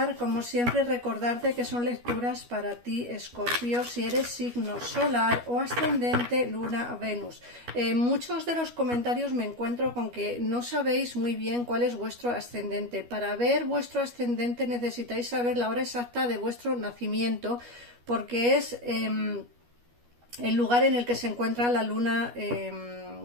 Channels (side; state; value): left; late; 12 ms